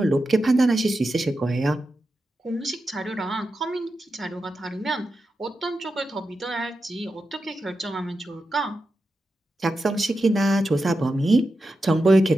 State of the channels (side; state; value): both; normal; correlation 0.89